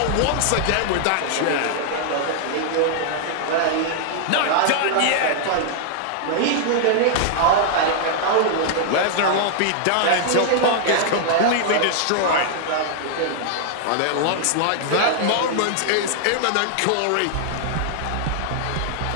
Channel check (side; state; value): both; different; correlation -0.01